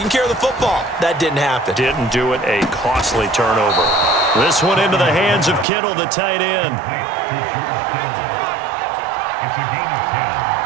care of the football. That didn't happen. Didn't do it. A costly turnover. This one into the hands of Kittle, the tight end.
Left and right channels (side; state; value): left; drops out; at 5.7 s